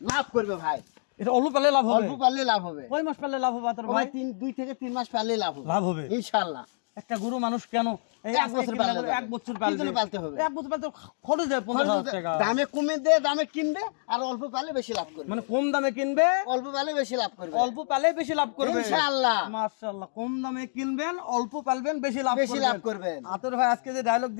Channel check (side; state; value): right; silent; digital silence